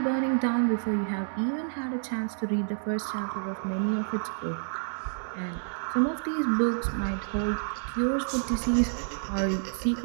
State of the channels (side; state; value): left; silent; digital silence